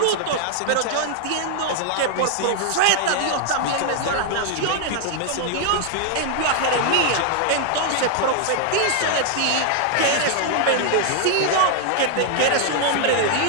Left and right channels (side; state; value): both; different; correlation 0.00